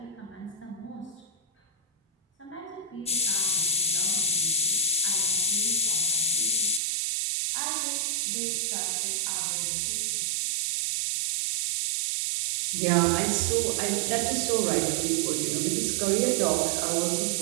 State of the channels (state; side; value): drops out; left; at 6.8 s